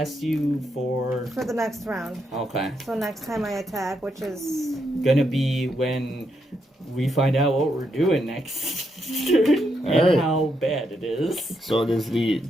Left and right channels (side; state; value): both; normal; correlation 0.80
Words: you for... For the next round. Okay. So next time I attack, which is Gonna be when we find out what we're doing next turn and Alright. how bad it is. So it is the